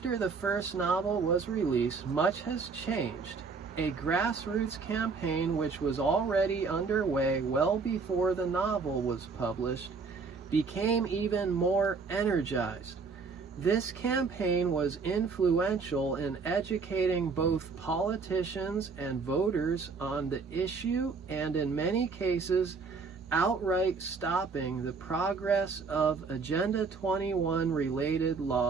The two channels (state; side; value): quieter; left; 4.8 dB